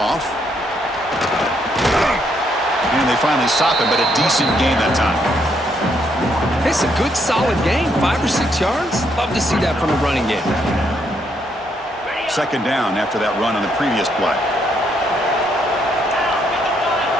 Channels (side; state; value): both; normal; correlation 0.73